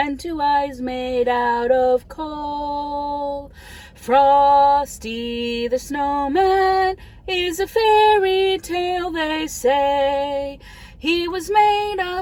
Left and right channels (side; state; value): both; identical; correlation 1.00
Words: 2 eyes made out of coal. Frosty the Snowman is a fairy tale, they say. He was made